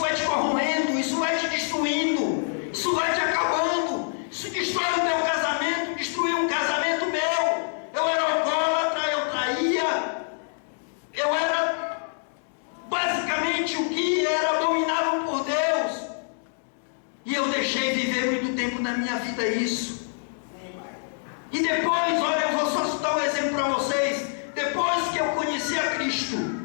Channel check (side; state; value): right; silent; digital silence